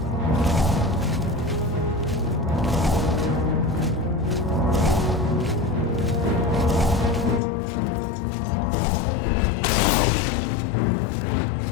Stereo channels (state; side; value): drops out; right; at 7.4 s